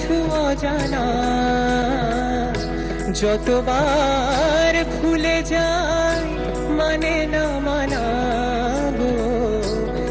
অজানা, যতবার ভুলে যায় মানে না মানা গো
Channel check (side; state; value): both; identical; correlation 1.00